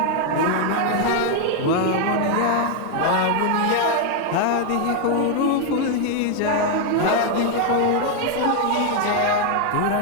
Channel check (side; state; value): both; different; correlation 0.00